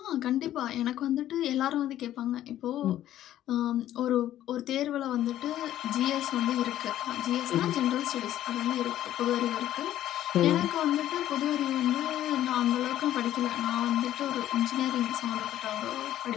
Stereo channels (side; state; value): right; quieter; 12.6 dB